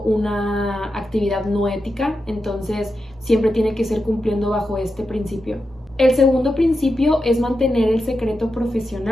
una actividad no ética. Entonces siempre tiene que ser cumpliendo bajo este principio. El segundo principio es mantener el secreto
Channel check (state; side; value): normal; both; correlation 0.89